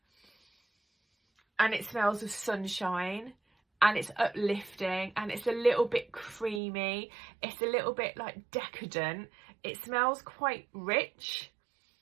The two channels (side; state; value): left; drops out; at 6.6 s